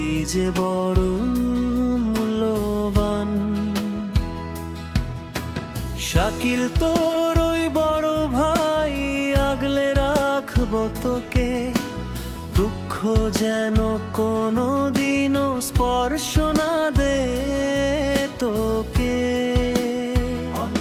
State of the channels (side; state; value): both; identical; correlation 1.00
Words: যে বড় মূল্যবান। শাকিল তোর ওই বড় ভাই, আগলে রাখবো তোকে। দুঃখ যেন কোনো দিনও স্পর্শ না দে তোকে।